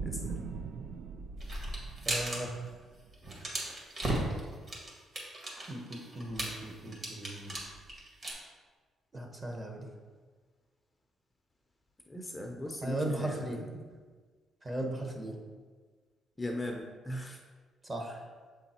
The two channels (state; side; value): normal; both; correlation 0.78